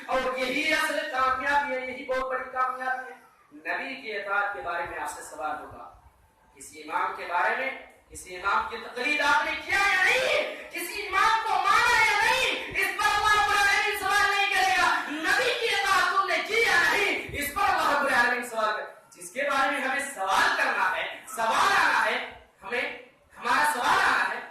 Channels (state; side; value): identical; both; correlation 1.00